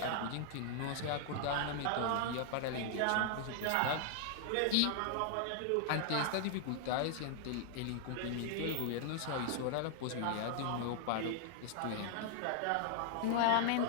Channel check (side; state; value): both; different; correlation -0.01